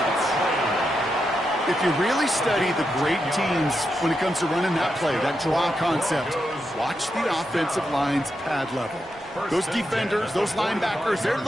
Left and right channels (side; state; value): right; noise; rumble, 27 dB below the sound